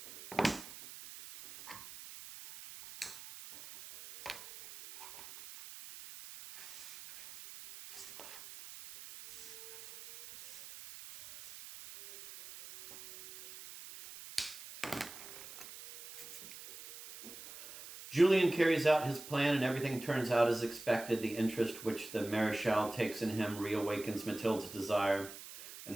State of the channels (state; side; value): noise; right; hiss, 14 dB below the sound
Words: Julien carries out his plan, and everything turns out as expected. The interest which the Marechal takes in him reawakens Mathilde's desire, and